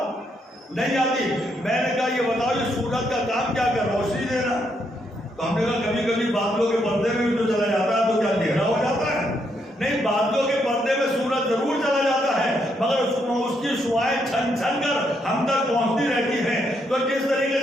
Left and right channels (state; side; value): normal; both; correlation 0.76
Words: نہیں آتی۔ میں نے کہا یہ بتاؤ یہ سورج کا کام کیا کر، روشنی دینا؟ تو ہم نے کہا کبھی کبھی بادلوں کے پردے میں بھی تو چلا جاتا ہے، تو کیا اندھیرا ہو جاتا ہے؟ نہیں، بادلوں کے پردے میں سورج ضرور چلا جاتا ہے، مگر اس کی شعاعیں چھن چھن کر ہم تک پہنچتی رہتی ہیں۔ تو جس طریقے